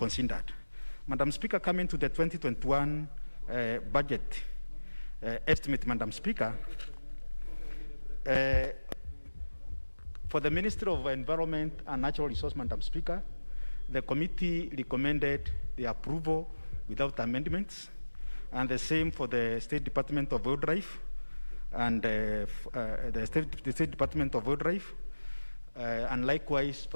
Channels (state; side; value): inverted; both; correlation -1.00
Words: Madam Speaker, coming to the 2021 budget estimate, Madam Speaker, for the Ministry of Environment and Natural Resources, Madam Speaker, the committee recommended the approval without amendments, and the same for the State Department of Wildlife and the State Department of Wildlife, and likewise